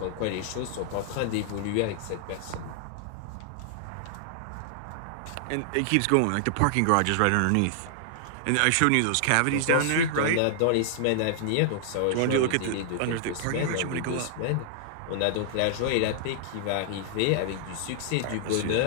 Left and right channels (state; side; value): different; both; correlation -0.01